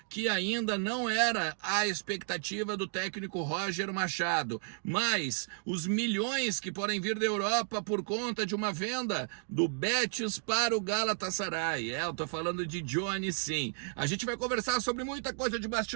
que ainda não era a expectativa do técnico Roger Machado, mas os milhões que podem vir da Europa por conta de uma venda do Betis para o Galatasaray. Eu tô falando de Johnny, sim. A gente vai conversar sobre muita coisa de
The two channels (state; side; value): silent; left; 56 dB below the other